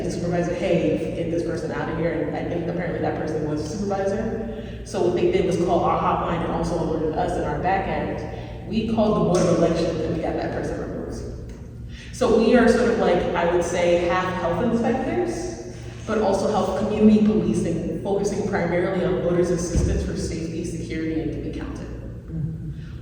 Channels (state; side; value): identical; both; correlation 1.00